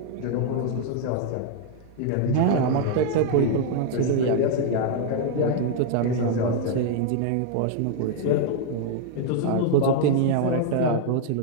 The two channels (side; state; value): both; different; correlation 0.00